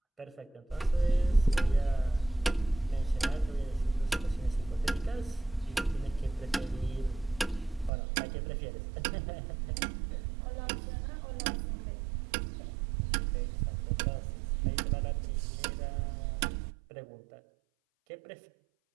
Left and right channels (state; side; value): drops out; left; at 7.9 s